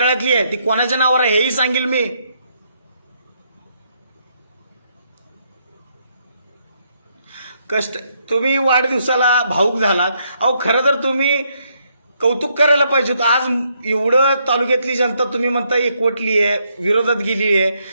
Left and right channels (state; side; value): inverted; both; correlation -0.75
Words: आहे. ती कोणाच्या नावावर आहे हेही सांगेल मी. कष्ट तुम्ही वाढदिवसाला भाऊक झालात. अहो, खरं तर तुम्ही कौतुक करायला पाहिजे होतं. आज एवढं तालुक्यातली जनता तुम्ही म्हणता एकवटली आहे, विरोधात गेली आहे,